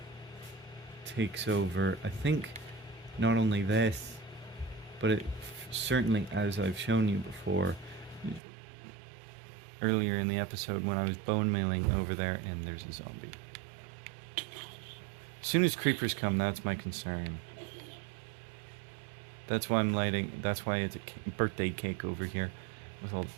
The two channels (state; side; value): drops out; left; at 8.4 s